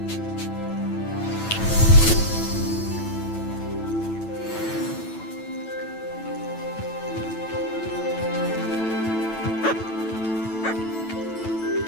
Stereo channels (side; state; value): right; late; 9.0 ms